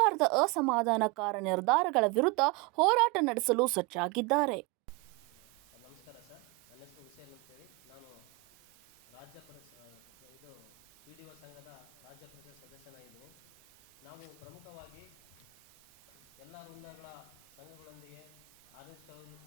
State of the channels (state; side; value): quieter; left; 22.6 dB